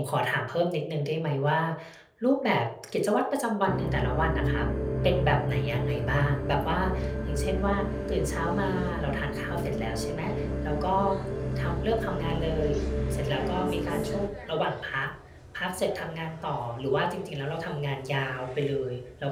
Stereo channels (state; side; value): identical; both; correlation 1.00